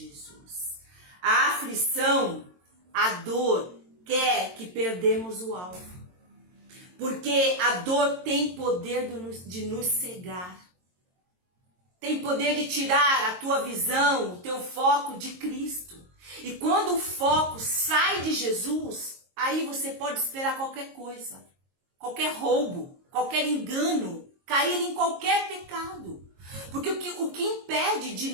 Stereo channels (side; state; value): left; late; 22 ms